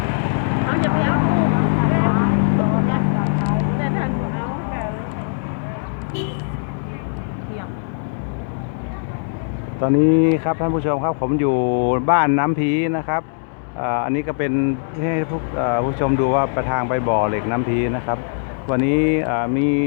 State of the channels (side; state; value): right; silent; digital silence